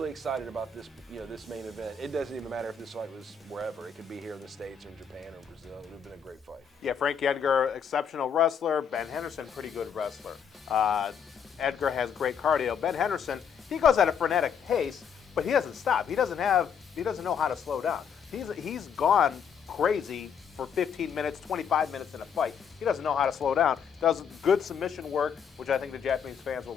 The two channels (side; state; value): right; quieter; 7.1 dB